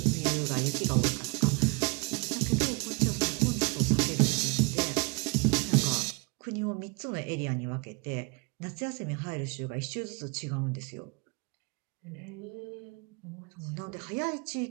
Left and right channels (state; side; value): quieter; left; 30.0 dB